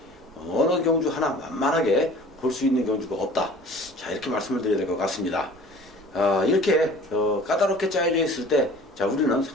어느 경주 하나 만만하게 볼 수 있는 경주가 없다. 자, 이렇게 말씀을 드려야 될 것 같습니다. 이렇게 까다롭게 짜여져 있을 때 자, 우리는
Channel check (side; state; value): right; noise; rumble, 25 dB below the sound